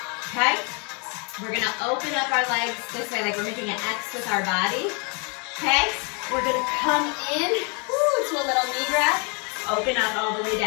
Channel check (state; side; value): quieter; right; 34.3 dB